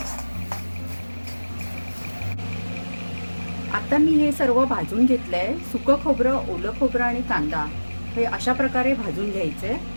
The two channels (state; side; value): inverted; both; correlation -1.00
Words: आता मी हे सर्व भाजून घेतलंय. सुकं खोबरं, ओलं खोबरं आणि कांदा हे अशा प्रकारे भाजून घ्यायचंय.